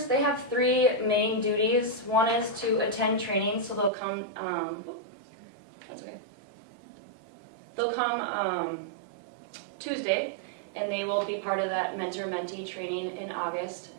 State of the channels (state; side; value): drops out; left; at 3.9 s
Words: they have 3 main duties. One is to attend training, so they'll come, that's okay. They'll come Tuesday, and they will be part of that mentor-mentee training in August.